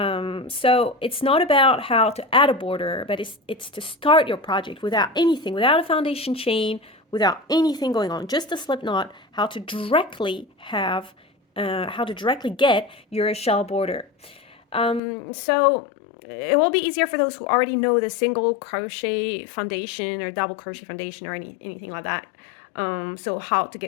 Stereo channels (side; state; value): right; drops out; at 15.0 s